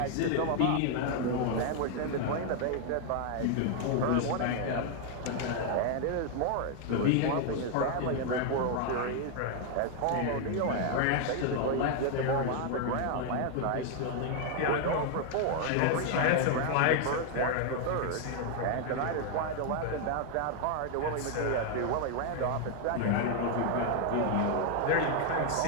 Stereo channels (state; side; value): different; both; correlation 0.00